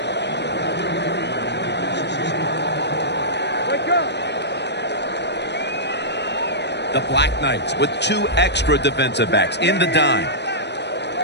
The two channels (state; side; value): late; right; 0.50 ms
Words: The Black Knights with 2 extra defensive backs in the dime.